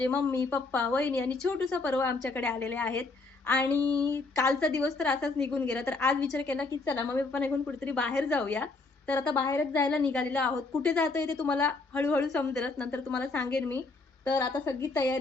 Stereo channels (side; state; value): right; quieter; 3.6 dB